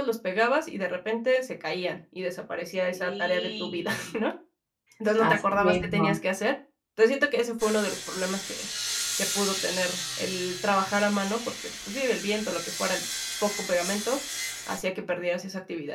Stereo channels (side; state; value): both; identical; correlation 1.00